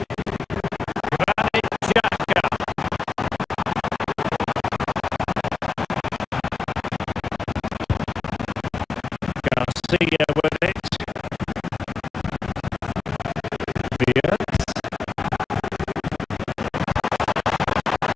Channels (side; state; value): right; quieter; 4.7 dB